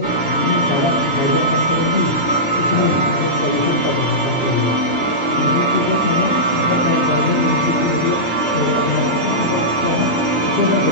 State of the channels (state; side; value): normal; both; correlation -0.13